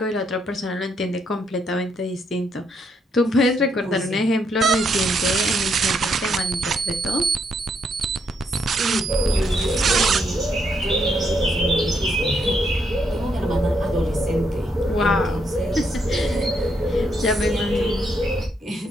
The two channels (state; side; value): normal; both; correlation 0.76